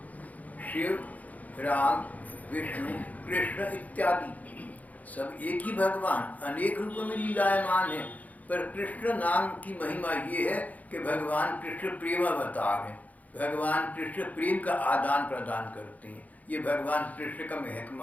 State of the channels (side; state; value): right; late; 0.076 ms